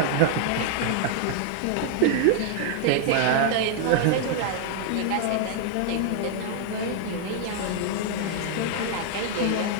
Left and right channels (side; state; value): both; different; correlation 0.00